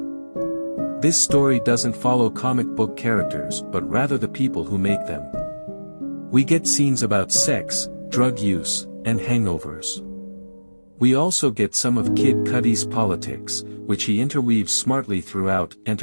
This story doesn't follow comic book characters, but rather the people who make them. We get scenes about sex, drug use, and hangovers. We also get some of Kid Cudi's politics, which he interweaves smartly throughout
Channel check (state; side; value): inverted; both; correlation -1.00